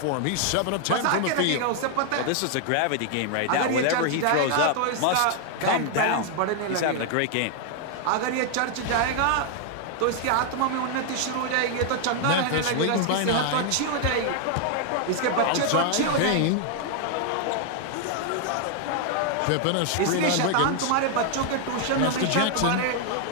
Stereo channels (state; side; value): different; both; correlation 0.00